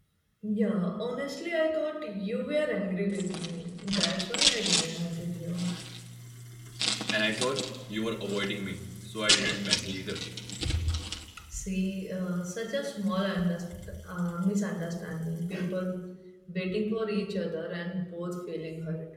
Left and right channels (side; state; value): both; identical; correlation 1.00